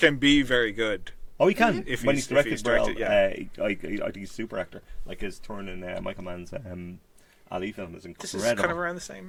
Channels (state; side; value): identical; both; correlation 1.00